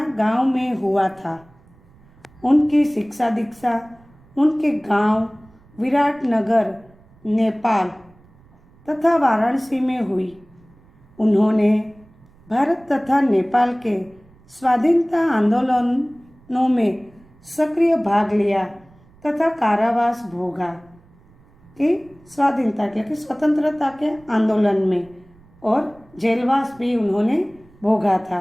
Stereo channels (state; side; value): noise; right; rumble, 28 dB below the sound